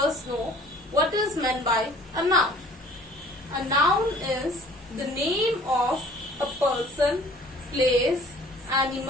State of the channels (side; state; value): both; normal; correlation 0.51